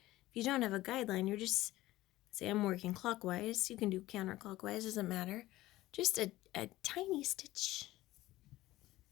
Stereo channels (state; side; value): quieter; right; 16.8 dB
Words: if you don't have a guideline, you're just, say I'm working clockwise, you can do counterclockwise, doesn't matter. Just a tiny stitch